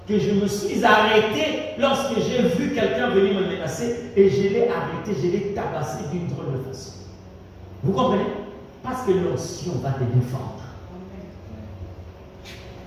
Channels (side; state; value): both; identical; correlation 1.00